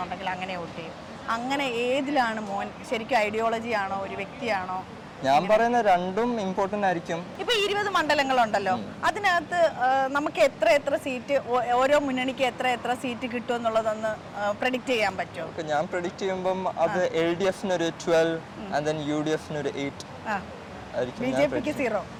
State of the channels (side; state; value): both; identical; correlation 1.00